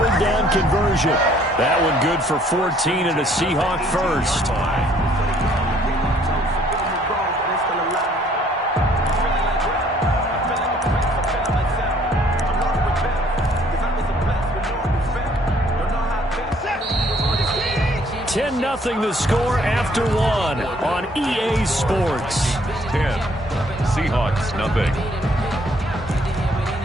down conversion. That one good for 14 and a Seahawk 1st. Nothing the score after 1 on EA Sports. 10. Seahawks, nothing.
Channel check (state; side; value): normal; both; correlation 0.62